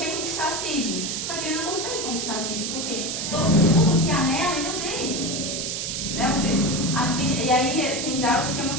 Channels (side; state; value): right; noise; hiss, 3 dB below the sound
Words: conquistar a Cid. Só que ele não consegue conquistar a Cid, porque tudo que há nela, ele odeia. Né? Ou seja, a Cid, e aí tem diálogos que é